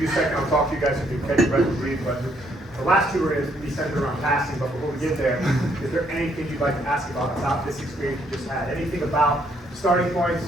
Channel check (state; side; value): normal; both; correlation 0.70